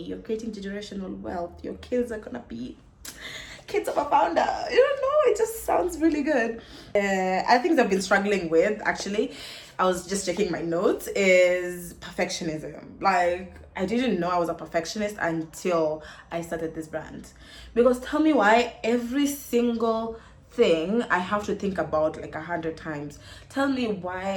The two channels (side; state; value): both; identical; correlation 1.00